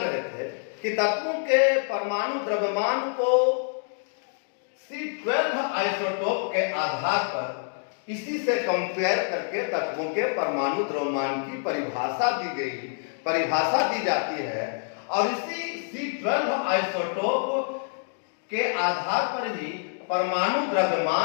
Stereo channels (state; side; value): silent; right; 60 dB below the other